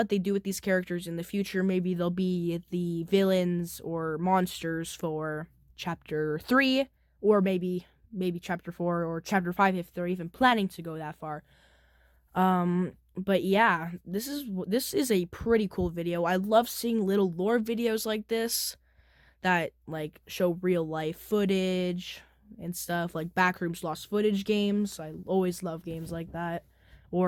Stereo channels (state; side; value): identical; both; correlation 1.00